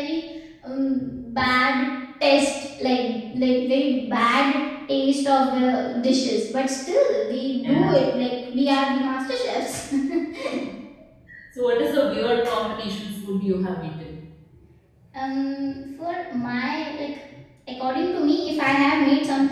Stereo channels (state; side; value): identical; both; correlation 1.00